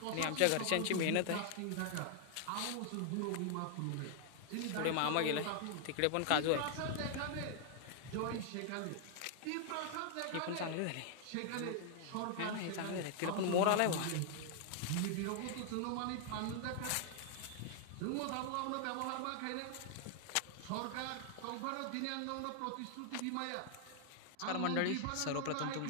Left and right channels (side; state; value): both; different; correlation 0.00